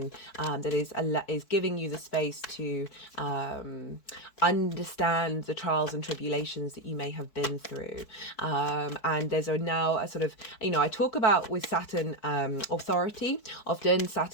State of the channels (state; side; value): late; right; 4.6 ms